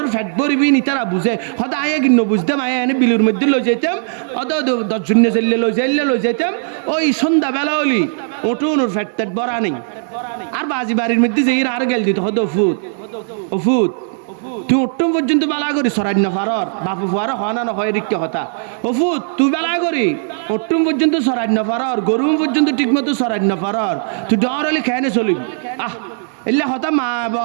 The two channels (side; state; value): left; silent; digital silence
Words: ফ্যাট বরিবি নি তারা বুঝে হয়তো আয়া কিন্ন বুঝতাম আয়া এনে বিলুর মধ্যে লই যেতাম অত 10 জন্য জেললে লই যেতাম ওই সন্ধ্যাবেলা হলি ওটুন ওর ফ্যাট ট্যাট বরা নেই আর বাজি বাড়ির মধ্যে যেই আর গেল দিত হয়তো ফুট তুই অট্টম পর্যন্ত বেলা করি সরাই না পারর বাপু ফুয়ার হনা না হয় রিক্কে হতা অফুত তুই বেলা করি অট্টম পর্যন্ত সরাই না পারর গরুম পর্যন্ত ঠিক মতো সরাই না পারর তুই ডর হলে খেয়ে চলিবি এলে হতা মা